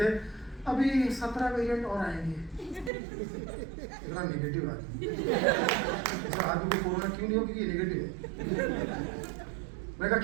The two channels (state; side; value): drops out; left; at 2.9 s